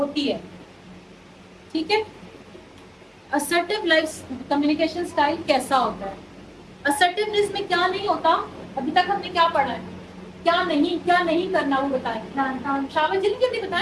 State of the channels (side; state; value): both; identical; correlation 1.00